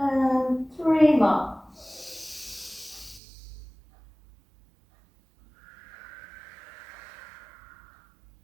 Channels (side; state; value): left; drops out; at 3.2 s